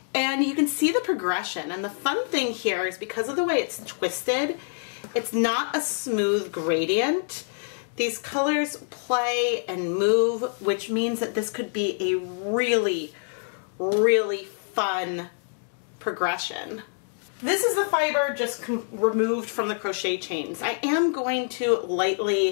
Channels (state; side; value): silent; right; digital silence